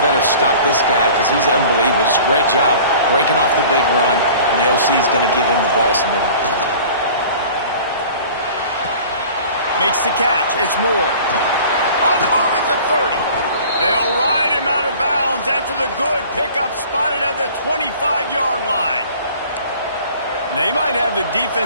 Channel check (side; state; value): both; inverted; correlation -0.45